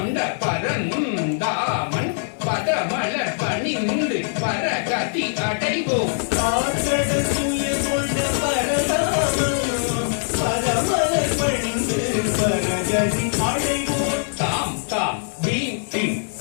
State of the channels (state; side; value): silent; right; 57 dB below the other